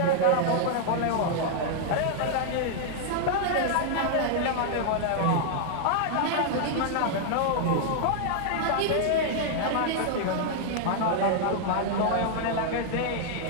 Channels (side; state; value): both; different; correlation -0.01